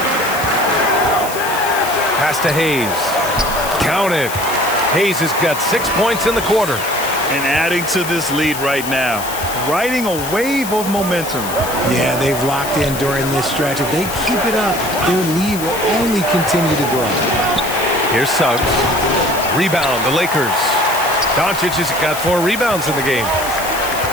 Pass to Hayes. Count it. Hayes has got 6 points in the quarter. And adding to this lead right now. Riding a wave of momentum. Yeah, they've locked in during this stretch. If they keep it up, their lead will only continue to grow. Here's Suggs. Rebound, the Lakers. Doncic has got 4 rebounds in the game.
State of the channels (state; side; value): noise; left; hiss, 9 dB below the sound